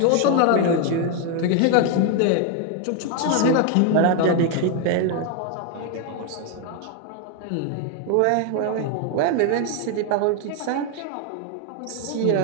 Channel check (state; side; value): different; both; correlation 0.01